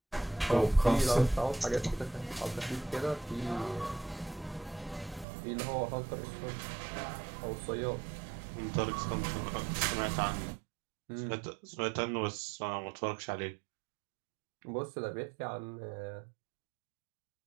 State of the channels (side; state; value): left; drops out; at 5.2 s